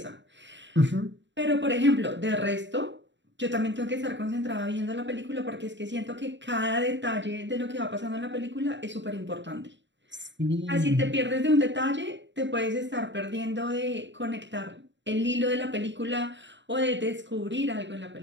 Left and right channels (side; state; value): left; late; 0.53 ms